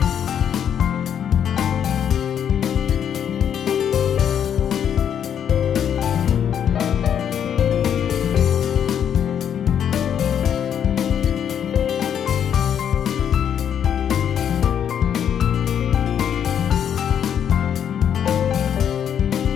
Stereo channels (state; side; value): quieter; right; 8.9 dB